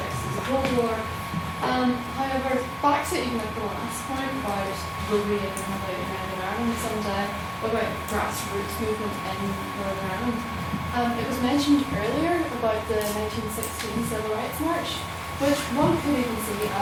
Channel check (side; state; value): both; identical; correlation 1.00